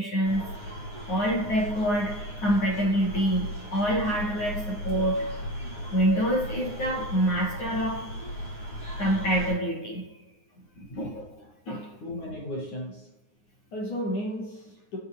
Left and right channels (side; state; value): right; late; 9.7 ms